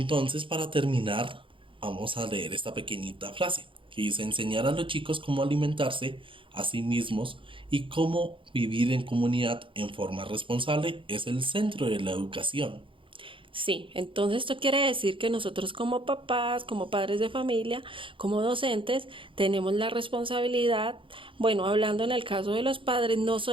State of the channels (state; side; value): late; left; 0.25 ms